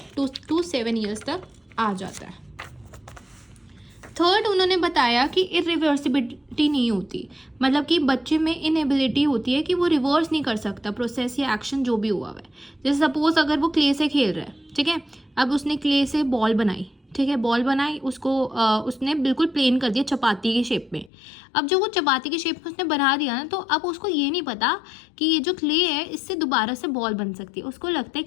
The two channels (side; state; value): right; drops out; at 21.1 s